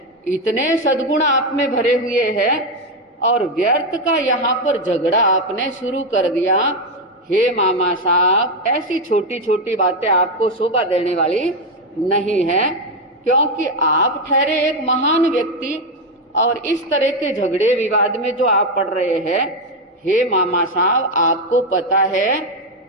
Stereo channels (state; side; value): normal; both; correlation 0.07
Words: इतने सद्गुण आप में भरे हुए हैं, और व्यर्थ का यहाँ पर झगड़ा आपने शुरू कर दिया। हे मामा साहब, ऐसी छोटी छोटी बातें आपको शोभा देने वाली नहीं है, क्योंकि आप ठहरे एक महान व्यक्ति, और इस तरह के झगड़े विवाद में जो आप पड़ रहे हैं, हे मामा साहब, आपको पता है